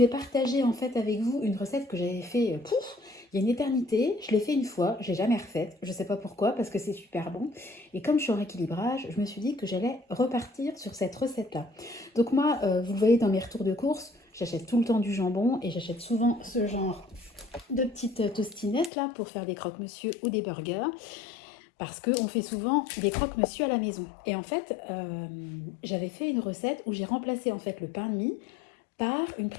partager en fait avec vous une recette que j'avais fait il y a une éternité. Je l'ai fait une fois, je l'ai jamais refaite, je sais pas pourquoi parce que c'est super bon. Et comme je suis en rééquilibrage, je me suis dit que j'allais repartir sur cette recette là. Donc moi, vous le voyez dans mes retours de course, j'achète tout le temps du jambon et j'achète souvent ce genre de petites tostinettes là pour faire des croque-monsieur ou des burgers. Parce qu'on fait souvent des croque-monsieur à la maison. Et en fait, j'avais fait une recette où j'ai remplacé en fait le pain de mie par une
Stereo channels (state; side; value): drops out; right; at 18.9 s